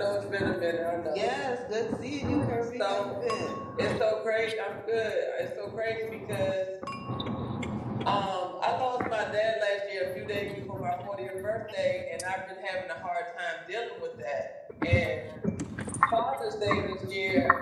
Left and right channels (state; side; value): identical; both; correlation 1.00